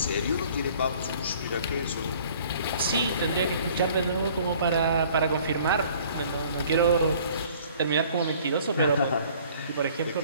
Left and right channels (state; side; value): inverted; both; correlation -0.53